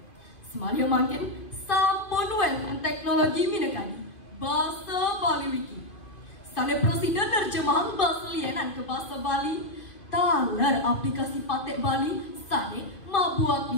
Semalia makin sampun wenten teknologi mineka di bahasa Bali Wiki. Sane presiden nerjemahan bahasa lienan ke bahasa Bali. Taler aplikasi patek Bali sane mabuat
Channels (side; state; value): right; late; 2.5 ms